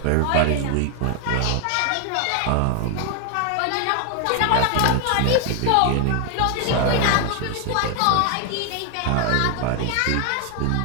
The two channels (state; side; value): different; both; correlation 0.00